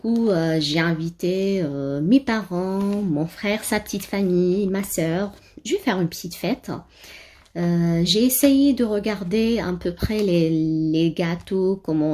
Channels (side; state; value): both; identical; correlation 1.00